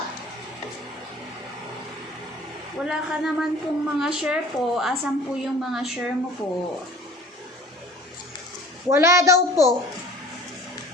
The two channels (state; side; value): normal; both; correlation 0.46